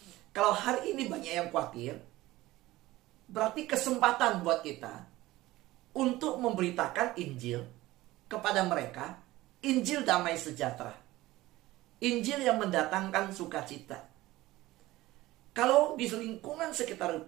Kalau hari ini banyak yang khawatir, berarti kesempatan buat kita untuk memberitakan Injil kepada mereka, Injil damai sejahtera, Injil yang mendatangkan sukacita. Kalau di lingkungan sekitar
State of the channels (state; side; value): quieter; left; 17.8 dB